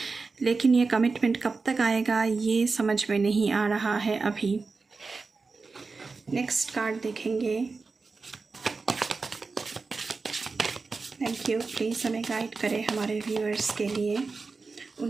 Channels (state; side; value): quieter; left; 4.2 dB